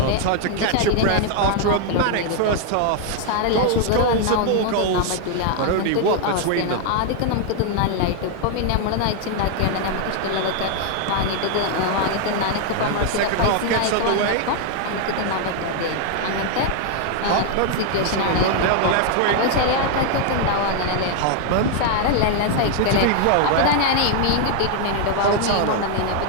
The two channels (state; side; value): different; both; correlation 0.00